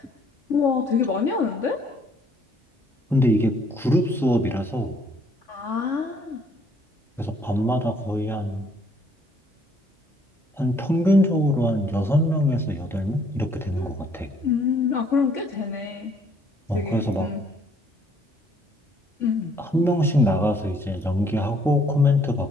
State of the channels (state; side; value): normal; both; correlation 0.64